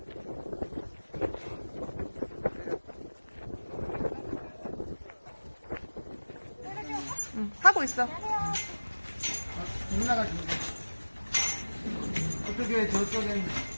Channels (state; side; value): inverted; both; correlation -1.00